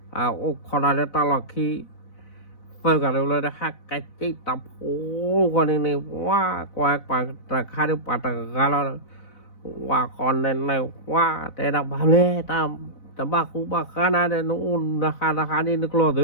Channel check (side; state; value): right; late; 4.0 ms